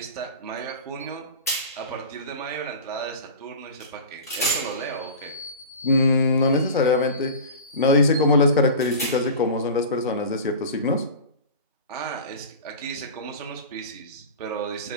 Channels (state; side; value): inverted; both; correlation -0.33